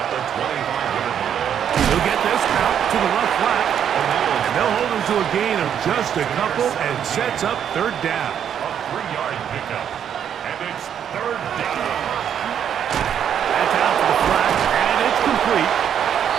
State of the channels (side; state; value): left; quieter; 8.9 dB